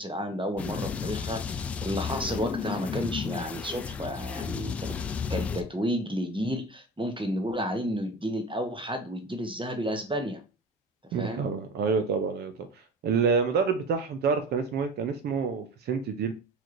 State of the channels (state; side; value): normal; both; correlation 0.38